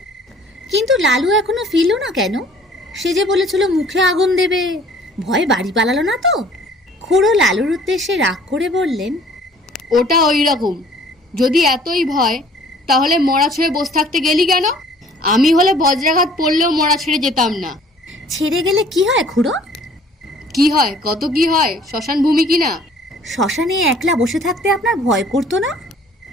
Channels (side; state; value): both; normal; correlation 0.54